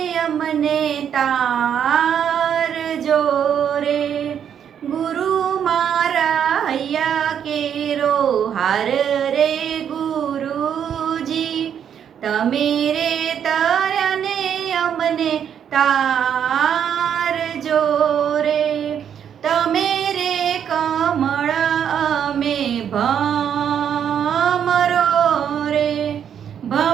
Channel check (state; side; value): quieter; left; 8.6 dB